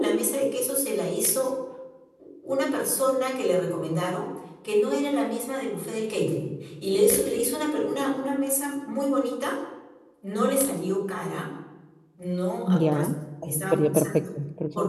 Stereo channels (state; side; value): identical; both; correlation 1.00